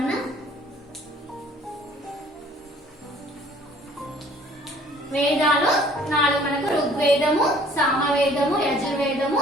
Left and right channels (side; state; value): both; normal; correlation 0.55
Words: వేదాలు 4 మనకు ఋగ్వేదము సామవేదము యజుర్వేదము